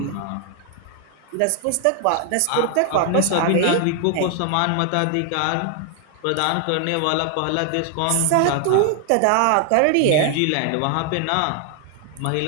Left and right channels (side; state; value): both; different; correlation 0.00